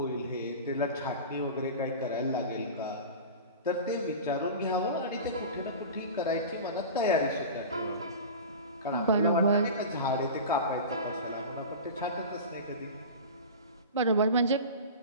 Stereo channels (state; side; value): inverted; both; correlation -0.32